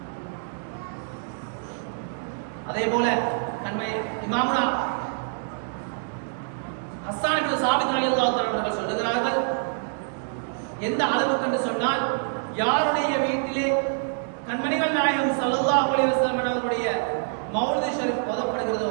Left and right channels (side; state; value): left; silent; digital silence